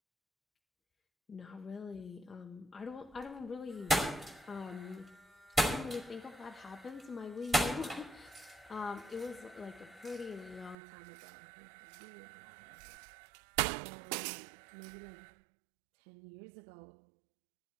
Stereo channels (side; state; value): left; drops out; at 10.8 s